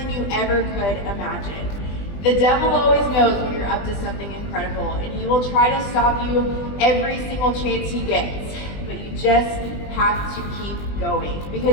you ever could imagine. The devil always knows when you're up to something incredible, and he will try to stop you every single chance he gets, but you just have to keep going,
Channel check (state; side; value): late; right; 20 ms